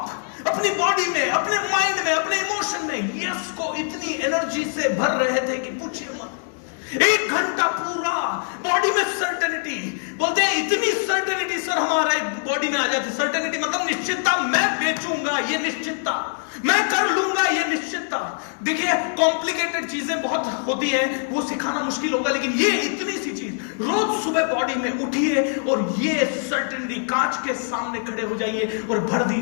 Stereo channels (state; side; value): silent; right; 59 dB below the other